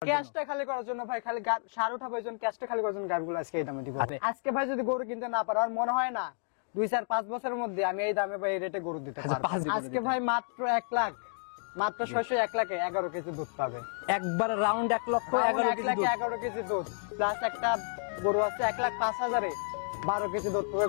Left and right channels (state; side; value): silent; right; 57 dB below the other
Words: ক্যাশটা খালি করার জন্য ভাই, খালি সার উঠাবো এই জন্য ক্যাশটা খালি করার জন্য গাড়িগুলো আজকে এই দামে দিব। আজকে ভাই যদি গরু কিনতে না পারো, আর মনে হয় না 2-4-5 বছরের মধ্যে আমি এই দামে ভাই এই রেটে গরু দিতে পারবো। আজকে ভাই মাত্র 1 লাখ, মাত্র 601 লাখে 11 কেজি দুধ পাবে। একবার রাউন্ড 1 লক্ষ 1 লাখে 11 কেজি দুধ, প্লাস একটা গরু আছে 1,05,000-এ 12 কেজি দুধ পাবে,